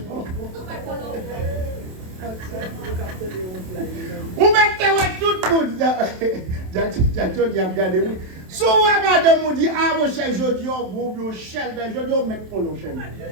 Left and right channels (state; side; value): late; left; 27 ms